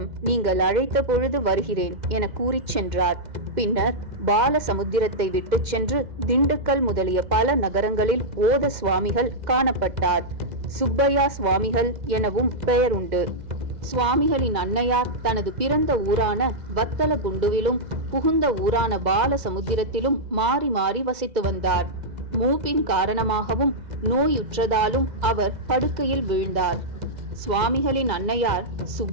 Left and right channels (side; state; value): left; late; 2.0 ms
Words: நீங்கள் அழைத்த பொழுது வருகிறேன் என கூறிச் சென்றார். பின்னர் பாலசமுத்திரத்தை விட்டு சென்று திண்டுக்கல் முதலிய பல நகரங்களில் ஓத சுவாமிகள் காணப்பட்டார். சுப்பையா சுவாமிகள் எனவும் பெயர் உண்டு. சுவாமிகளின் அன்னையார் தனது பிறந்த ஊரான வத்தலகுண்டுவிலும் புகுந்த ஊரான பாலசமுத்திரத்திலும் மாறி மாறி வசித்து வந்தார். மூப்பின் காரணமாகவும் நோயுற்றதாலும் அவர் படுக்கையில் வீழ்ந்தார். சுவாமிகளின் அன்னையார்